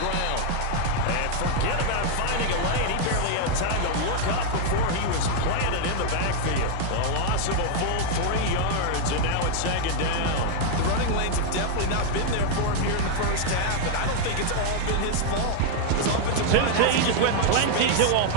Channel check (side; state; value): both; different; correlation 0.00